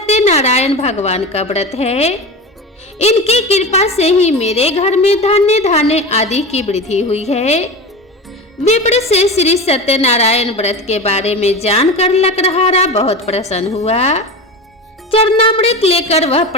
भगवान का व्रत है। इनकी कृपा से ही मेरे घर में धान्य धान्य आदि की वृद्धि हुई है। विप्र से श्री सत्यनारायण व्रत के बारे में जानकर लकड़हारा बहुत प्रसन्न हुआ। चरणामृत लेकर वह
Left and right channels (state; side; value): normal; both; correlation 0.27